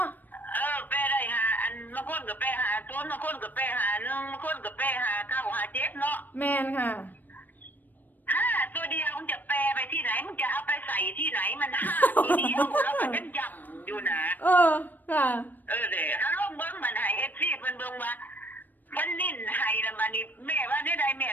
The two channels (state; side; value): late; right; 0.088 ms